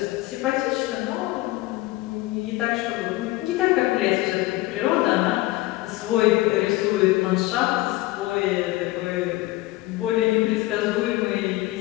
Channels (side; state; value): right; quieter; 18.8 dB